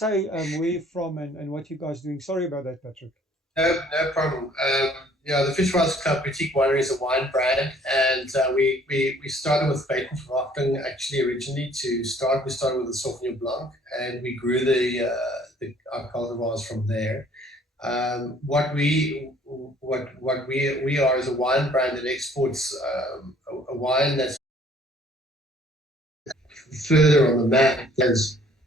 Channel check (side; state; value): both; normal; correlation 0.58